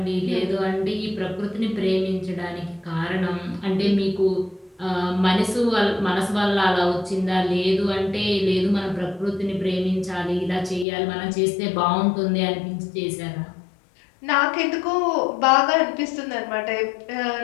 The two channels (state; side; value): drops out; right; at 10.9 s